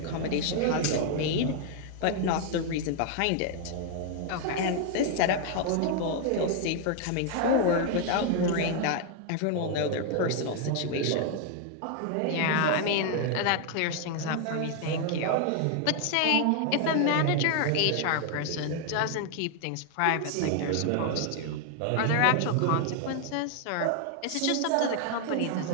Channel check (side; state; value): both; different; correlation 0.00